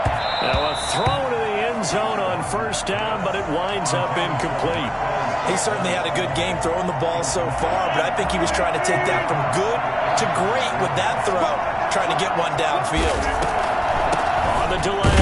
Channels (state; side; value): identical; both; correlation 1.00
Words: Now a throw to the end zone on first down, but it winds up incomplete. He certainly had a good game throwing the ball so far, but I think he was trying to take that from good to great with that throw, trying to get one downfield. On the